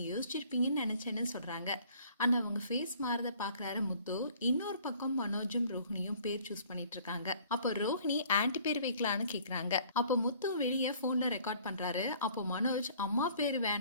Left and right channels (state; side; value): inverted; both; correlation -0.55